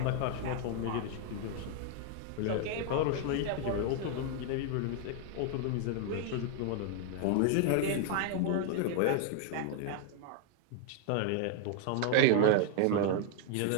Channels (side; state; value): both; different; correlation 0.00